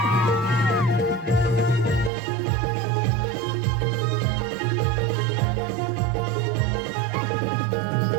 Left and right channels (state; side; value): drops out; left; at 2.1 s